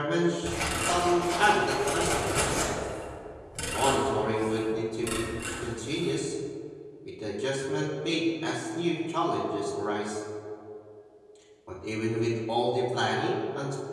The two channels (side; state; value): both; identical; correlation 1.00